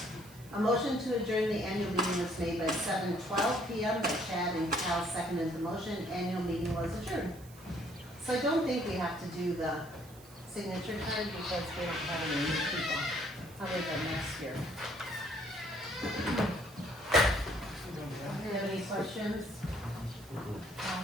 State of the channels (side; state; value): right; noise; hiss, 21 dB below the sound